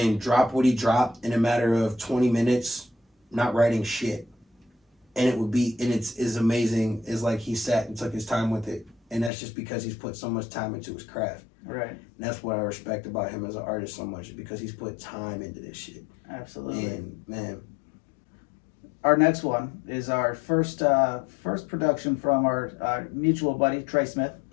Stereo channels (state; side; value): drops out; right; at 9.3 s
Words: dropped what he dropped in a matter of 20 minutes, not writing shit. And it would be, and it's as amazing as, like, he sat and took his time with it. And that's just because he's put so much time into his craft. Right. And that's what I respect about him as an artist so much, because he's put time into this shit. Absolutely. And, man. Our next one is our first production from our mutual buddy, Trey Smith.